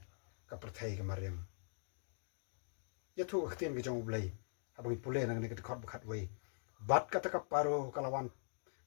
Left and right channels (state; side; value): silent; right; digital silence